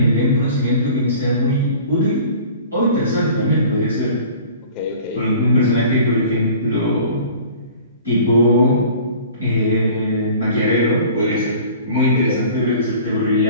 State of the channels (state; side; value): inverted; both; correlation -0.45